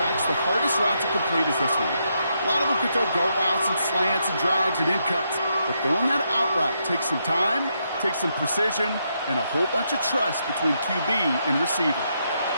the hardest route to complete is this one. A lot of them could throw go routes and slants and drags and in cuts, but throwing that out route takes some time, takes some precision, and a whole bunch of trust between QB and receiver.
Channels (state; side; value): inverted; both; correlation -0.79